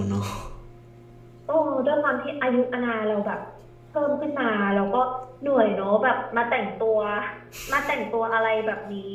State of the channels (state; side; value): identical; both; correlation 1.00